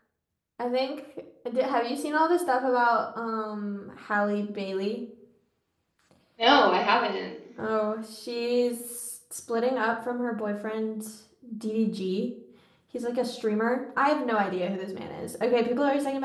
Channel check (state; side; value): identical; both; correlation 1.00